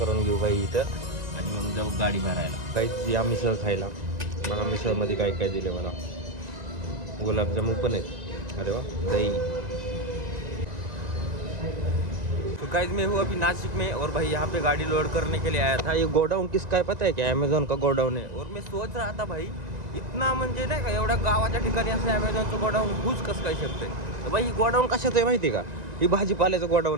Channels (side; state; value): left; late; 1.9 ms